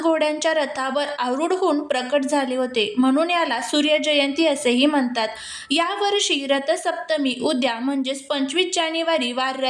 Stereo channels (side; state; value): both; identical; correlation 1.00